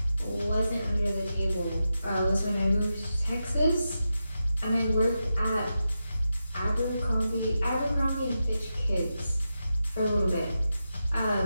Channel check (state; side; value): inverted; both; correlation -0.89